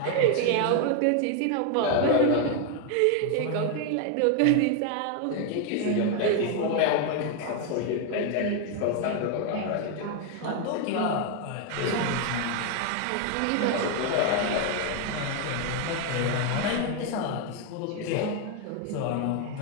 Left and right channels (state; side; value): different; both; correlation 0.01